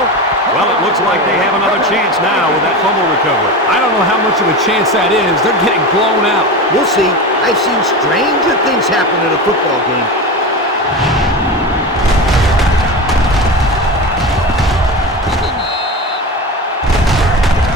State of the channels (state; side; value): normal; both; correlation 0.25